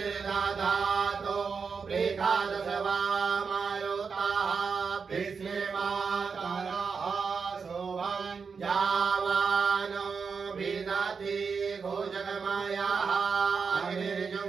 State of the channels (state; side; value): quieter; left; 5.5 dB